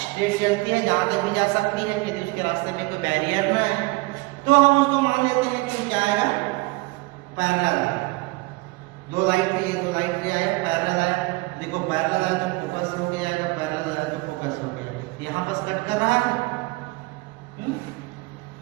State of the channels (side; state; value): left; quieter; 24.2 dB